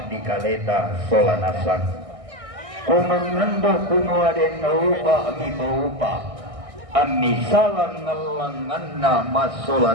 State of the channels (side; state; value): left; late; 1.6 ms